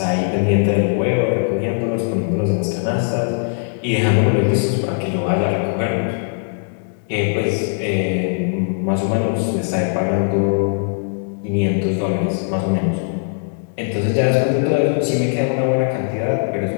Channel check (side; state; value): right; silent; digital silence